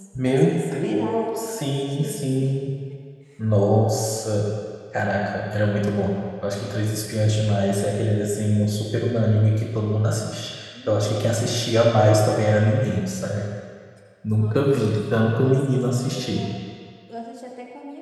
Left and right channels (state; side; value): identical; both; correlation 1.00